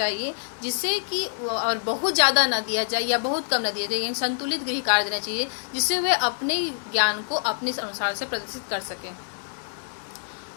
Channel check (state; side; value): silent; right; 61 dB below the other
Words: जिससे कि और बहुत ज़्यादा ना दिया जाए या बहुत कम ना दिया जाए, यानी संतुलित गृह कार्य देना चाहिए जिससे वे अपने ज्ञान को अपने अनुसार से प्रदर्शित कर सकें।